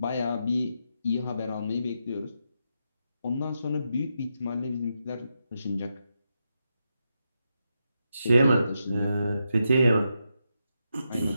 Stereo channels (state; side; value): inverted; both; correlation -0.85